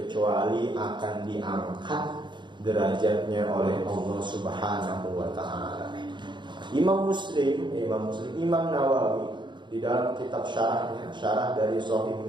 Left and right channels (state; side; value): late; left; 0.23 ms